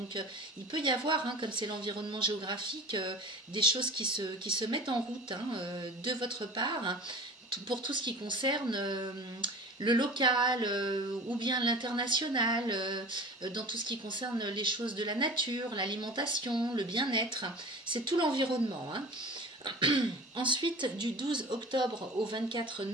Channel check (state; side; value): normal; both; correlation 0.38